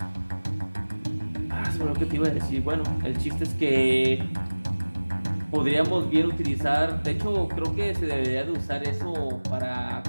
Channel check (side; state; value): both; inverted; correlation -1.00